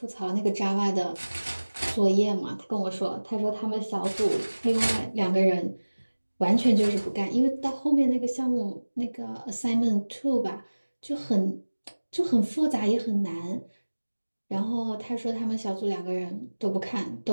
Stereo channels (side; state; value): both; inverted; correlation -1.00